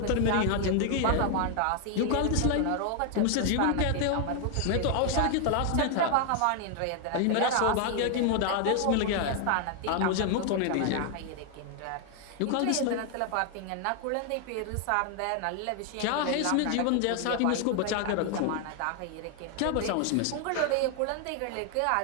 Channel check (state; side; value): different; both; correlation 0.00